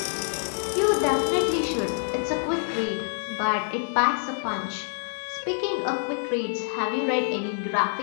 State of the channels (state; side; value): silent; right; 61 dB below the other